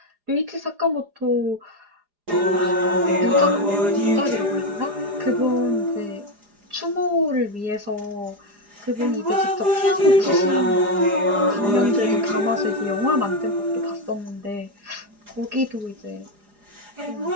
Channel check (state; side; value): late; left; 4.9 ms